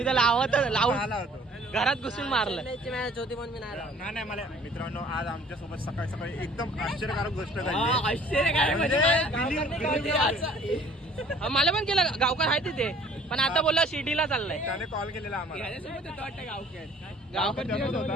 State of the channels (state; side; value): normal; both; correlation 0.54